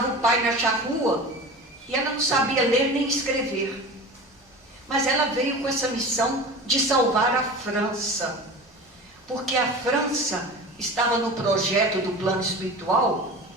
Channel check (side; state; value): both; normal; correlation 0.34